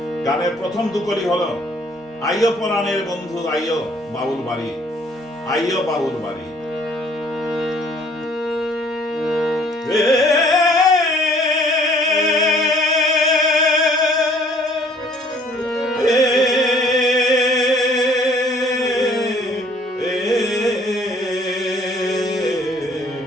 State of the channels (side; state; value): both; normal; correlation 0.59